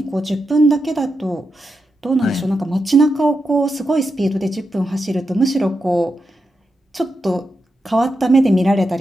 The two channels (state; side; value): normal; both; correlation 0.87